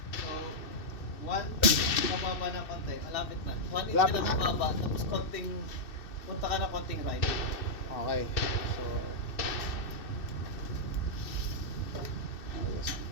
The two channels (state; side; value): late; right; 2.6 ms